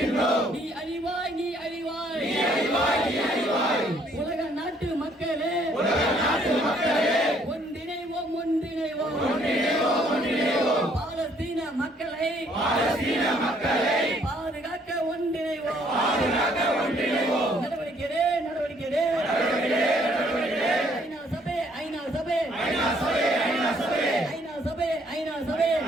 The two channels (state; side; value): normal; both; correlation 0.65